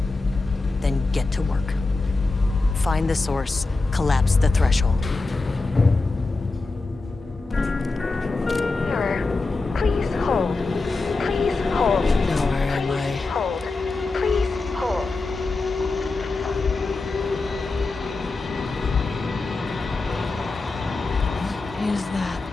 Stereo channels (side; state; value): right; quieter; 3.5 dB